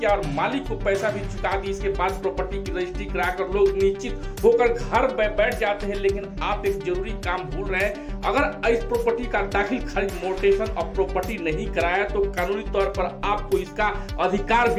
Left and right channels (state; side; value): identical; both; correlation 1.00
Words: और मालिक को पैसा भी चुका दी, इसके बाद प्रॉपर्टी की रजिस्ट्री कराकर लोग निश्चित होकर घर बैठ जाते हैं। लेकिन आप एक जरूरी काम भूल रहे हैं। अगर इस प्रॉपर्टी का दाखिल खरीद मोटेशन और प्रॉपर्टी नहीं कराया तो कानूनी तौर पर आपको इसका अधिकार